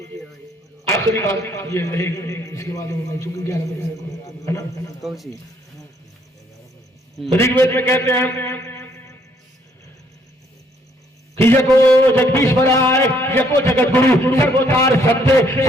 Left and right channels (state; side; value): normal; both; correlation 0.67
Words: آخری بات یہ رہے گی، اس کے بعد چونکہ 11 بجے ہے نا، رگ وید میں کہتے ہیں کہ یکو جگدیشورائے یکو جگت گرو سروتار ستیہ